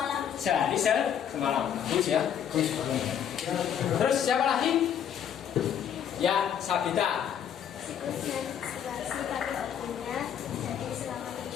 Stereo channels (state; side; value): quieter; right; 9.0 dB